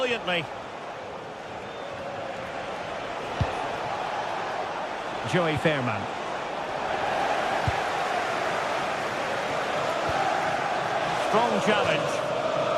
Joey Fairman. Strong challenge.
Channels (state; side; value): identical; both; correlation 1.00